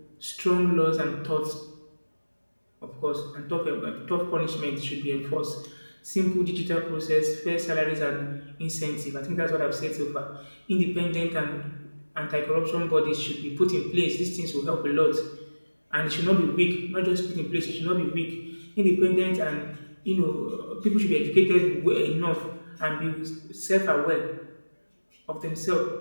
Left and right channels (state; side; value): inverted; both; correlation -1.00